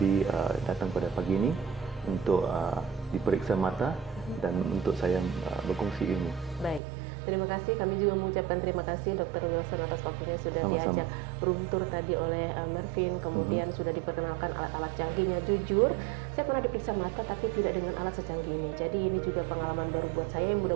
datang pada pagi ini untuk diperiksa mata dan untuk saya berkongsi ilmu. Baik. Terima kasih, kami juga mengucapkan terima kasih Dr. Wilson atas waktunya sudah Sama-sama. diajak room tour tadi oleh Mervin, kemudian sudah diperkenalkan alat-alat canggihnya. Jujur, saya pernah diperiksa mata tapi tidak dengan alat secanggih ini. Jadi ini juga pengalaman baru buat saya yang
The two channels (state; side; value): drops out; left; at 6.8 s